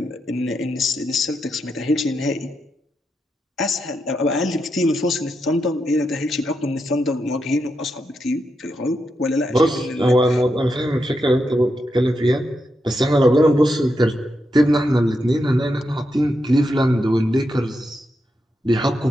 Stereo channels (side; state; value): both; normal; correlation 0.84